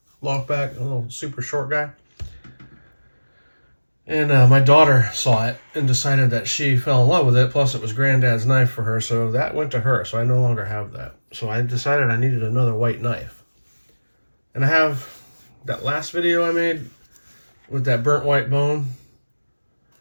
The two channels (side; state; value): both; inverted; correlation -1.00